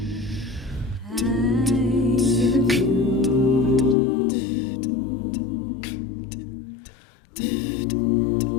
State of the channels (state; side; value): drops out; right; at 4.0 s